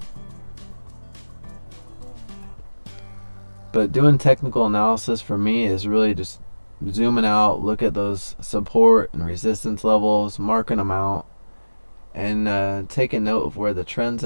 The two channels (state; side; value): inverted; both; correlation -1.00